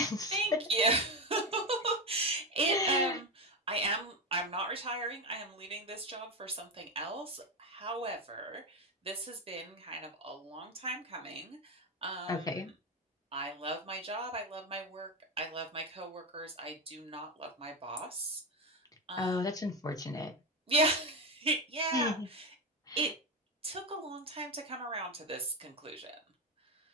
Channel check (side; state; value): both; normal; correlation 0.14